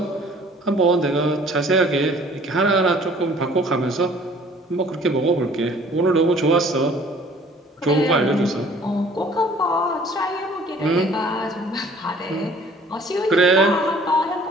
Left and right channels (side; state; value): both; normal; correlation 0.53